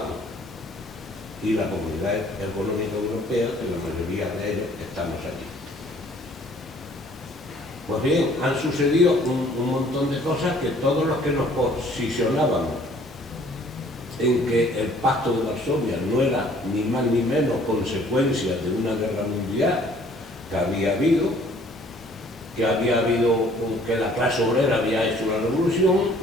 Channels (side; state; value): both; normal; correlation 0.57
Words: y la Comunidad Económica Europea, que la mayoría de ellos estamos allí. Pues bien, han sucedido un montón de cosas que todos los que nos posicionábamos en que el Pacto de Varsovia no era ni más ni menos consecuencia de una guerra mundial que había habido que la clase obrera había hecho la revolución